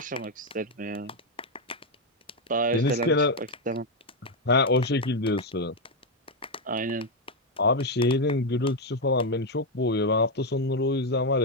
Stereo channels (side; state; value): both; normal; correlation 0.04